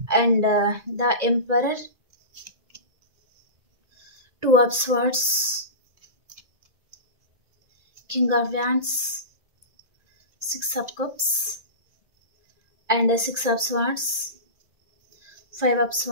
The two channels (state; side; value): late; left; 1.9 ms